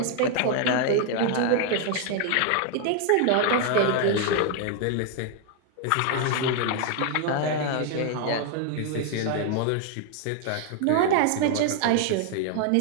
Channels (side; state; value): both; different; correlation 0.00